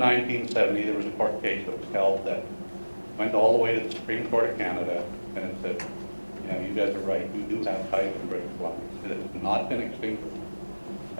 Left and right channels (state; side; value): inverted; both; correlation -1.00